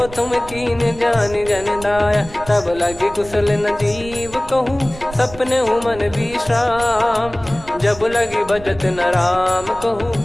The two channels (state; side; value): noise; right; rumble, 16 dB below the sound